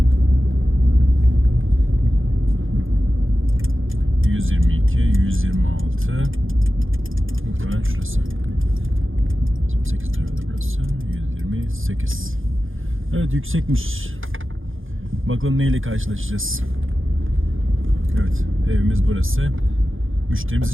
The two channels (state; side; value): late; left; 0.58 ms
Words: Muhtemelen şurası. 8 lirada burası. 128. Evet, yüksekmiş. Bakalım neyle karşılaşacağız. Evet, evimiz burası. Müşterimiz